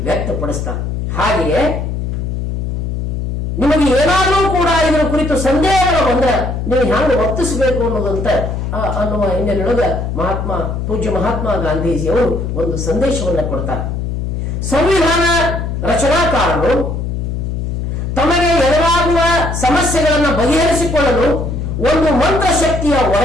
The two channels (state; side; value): noise; left; hum, 3 dB below the sound